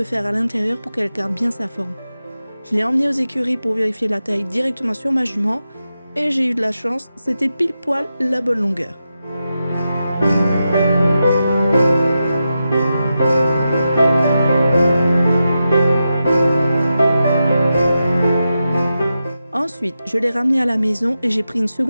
fer à l'intérieur pour qu'elle garde bien sa forme. Je l'ai emmenée aux écuries pour vérifier la taille directement sur ma jument et j'ai eu de la chance, c'était pile poil la bonne longueur. Ensuite, je l'ai ramenée à la maison et j'ai pris une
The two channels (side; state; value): both; inverted; correlation -0.89